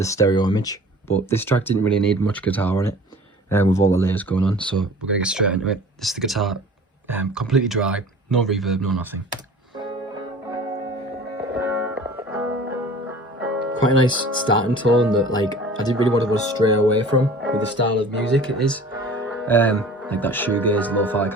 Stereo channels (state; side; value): normal; both; correlation 0.44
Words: stereo image, but this track didn't really need much guitar on it with all the layers going on, so we're going to get straight into it. This is the guitar, completely dry, no reverb, no nothing. Quite a nice starting tone that I didn't really want to go stray away from with the style of music it is. Like that shoegaze, lo-fi